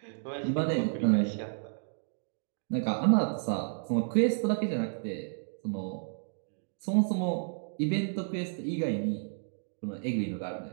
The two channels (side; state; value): left; silent; digital silence